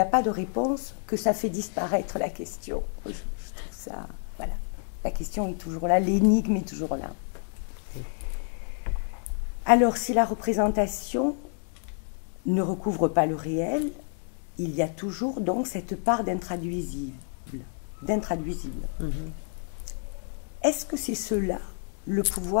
pas de réponse que ça fait disparaître la question. Je trouve ça, voilà. La question est toujours là, l'énigme est toujours là. Alors, si la représentation ne recouvre pas le réel, il y a toujours donc cette part d'intraduisible. Est-ce que c'est cela, le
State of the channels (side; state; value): right; silent; 59 dB below the other